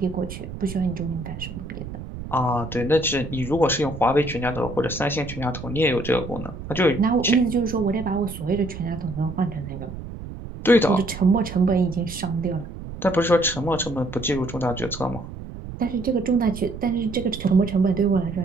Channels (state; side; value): noise; right; rumble, 11 dB below the sound